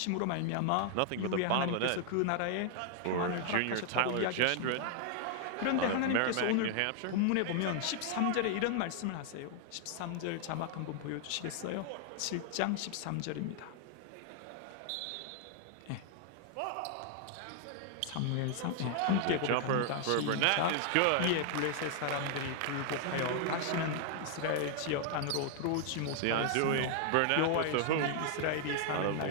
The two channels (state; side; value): different; both; correlation 0.00